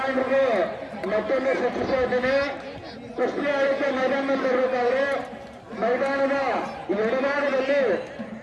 ಮತ್ತೊಂದು ಸೂಚಿಸ್ತಾ ಇದ್ದೀನಿ. ಕುಸ್ತಿ ಆಡಕ್ಕೆ ಮೈದಾನದಲ್ಲಿ ಬರಬೇಕಾದ್ರೆ ಮೈದಾನದ ಎಡಭಾಗದಲ್ಲಿ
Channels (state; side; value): identical; both; correlation 1.00